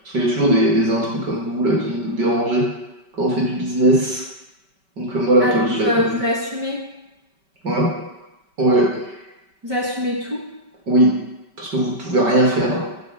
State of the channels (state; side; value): late; left; 5.2 ms